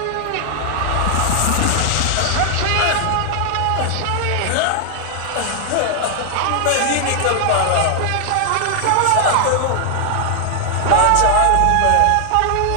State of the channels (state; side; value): different; both; correlation 0.00